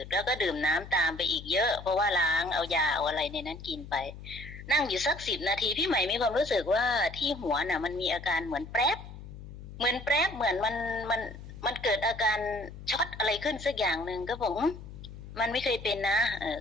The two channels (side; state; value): left; noise; hum, 13 dB below the sound